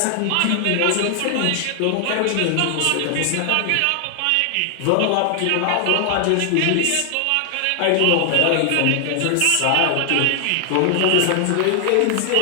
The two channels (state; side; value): different; both; correlation 0.00